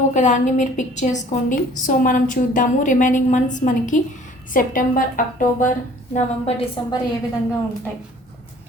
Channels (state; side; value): normal; both; correlation 0.52